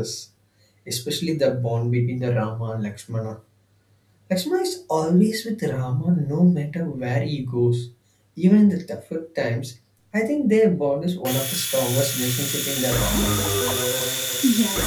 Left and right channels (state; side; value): identical; both; correlation 1.00